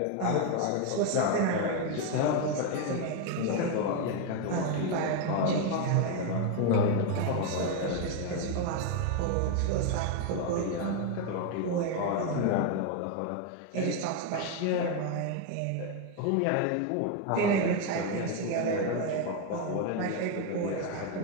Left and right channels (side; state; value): both; different; correlation 0.01